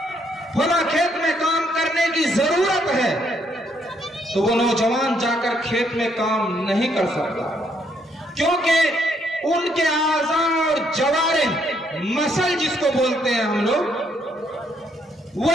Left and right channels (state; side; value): normal; both; correlation 0.72